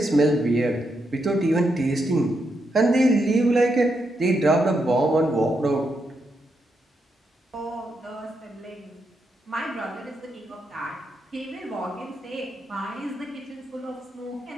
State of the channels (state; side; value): normal; both; correlation 0.82